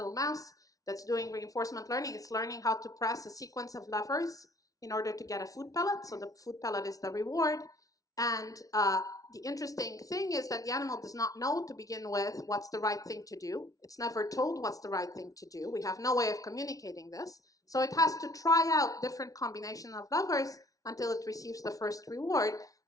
mouse that's doing reinforcement learning. It's learning how to press a sequence of levers in order to get a food pellet. So the food pellet is the reward. And the interesting thing is that the animal does not know to begin with what's the right thing to do. It's never told what's the right thing to do. We have no way of communicating this. So it has to try out different combinations of levers until it receives the first reward.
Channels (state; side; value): late; right; 0.17 ms